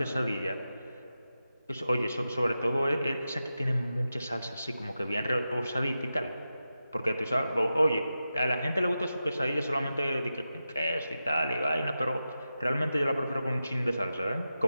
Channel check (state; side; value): inverted; both; correlation -0.91